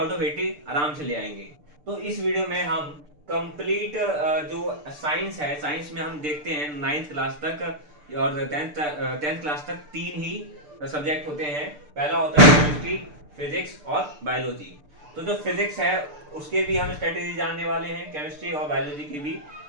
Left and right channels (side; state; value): left; late; 6.8 ms